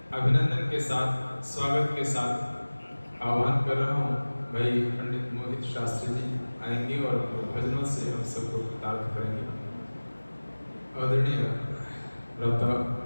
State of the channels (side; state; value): both; inverted; correlation -1.00